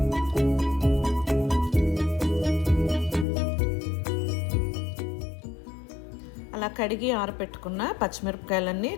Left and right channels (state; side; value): drops out; right; at 3.2 s